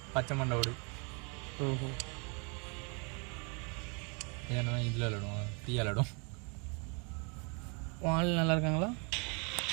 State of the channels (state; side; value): quieter; left; 34.4 dB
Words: பச்சை மண்டோடு. ஓஹோ ஏன்னா இதில் விளாடுவோம் ஃப்ரீயாக விளாடும். ஆள் நல்லா இருக்காங்களா?